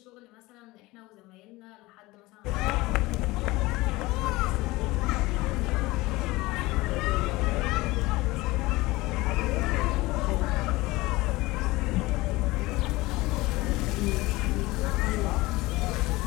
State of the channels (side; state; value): right; quieter; 20.5 dB